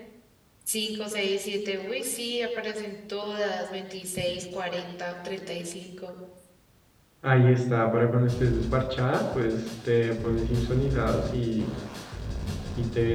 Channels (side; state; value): both; identical; correlation 1.00